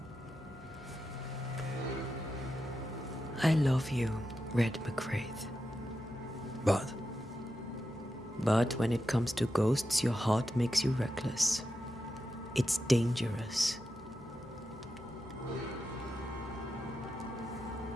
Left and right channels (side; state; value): left; noise; hum, 21 dB below the sound